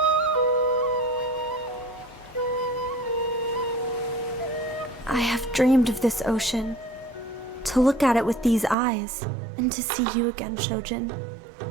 I have dreamed of this ocean. To look at it with these eyes, and to see you again, Shojin.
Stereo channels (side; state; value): left; drops out; at 8.8 s